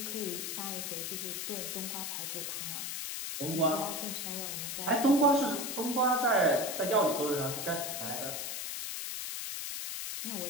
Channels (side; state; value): left; noise; hiss, 4 dB below the sound